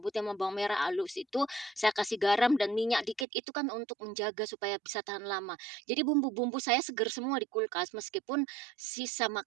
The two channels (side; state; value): left; drops out; at 3.2 s